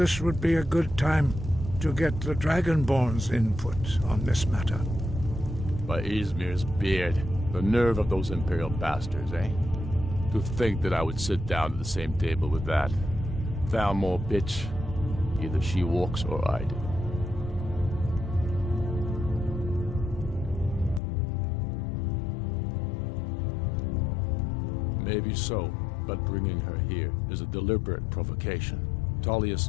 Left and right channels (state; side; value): drops out; right; at 21.0 s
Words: would be a good time to get the Dragonborn's input on this matter. By Izmir's beard, the nerve of those Imperial bastards, eh? To think that I would sit down at the same table with that. Thalmor bitch. Either she walks or I do. Maybe so, but bringing her here is a deliberate provocation. Tullius